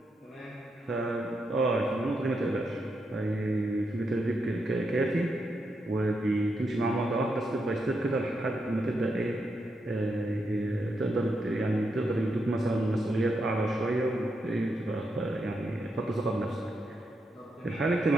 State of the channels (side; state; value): both; normal; correlation 0.83